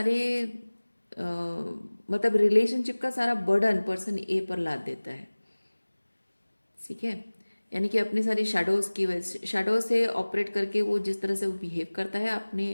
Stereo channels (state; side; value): inverted; both; correlation -1.00